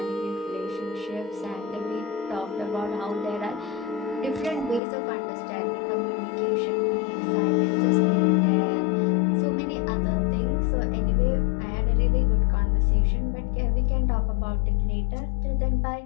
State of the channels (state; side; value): drops out; right; at 4.8 s